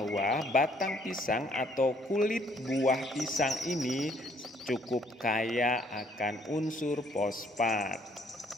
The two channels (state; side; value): normal; both; correlation 0.64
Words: batang pisang atau kulit buah pisang ini cukup kaya akan unsur fosfat.